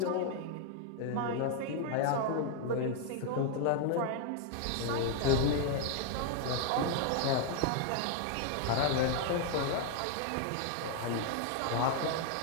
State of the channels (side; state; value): both; different; correlation 0.00